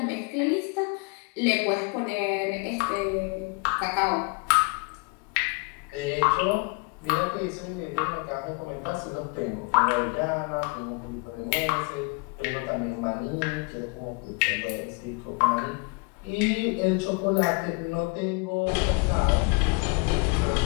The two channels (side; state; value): right; quieter; 31.0 dB